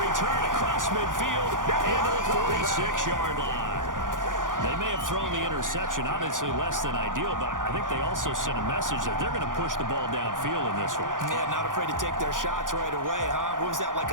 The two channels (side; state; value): left; late; 0.88 ms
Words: return across midfield into the 46-yard line. They may have thrown the interception, obviously less than ideal, but I think they also sent a message that they're going to push the ball downfield in this one. Yeah, not afraid to take their shots right away, huh? What was that, like